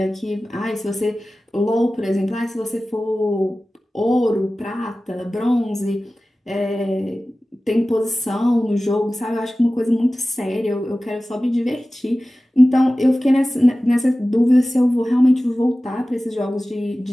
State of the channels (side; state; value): both; normal; correlation 0.96